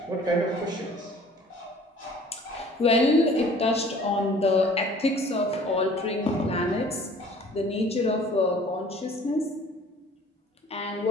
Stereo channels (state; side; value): normal; both; correlation 0.51